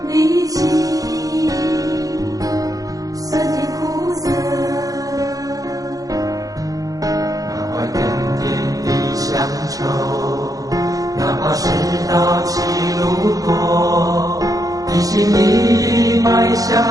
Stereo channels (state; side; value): late; left; 0.17 ms